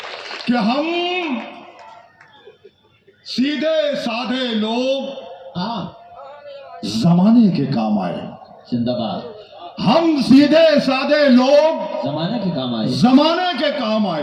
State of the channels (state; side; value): identical; both; correlation 1.00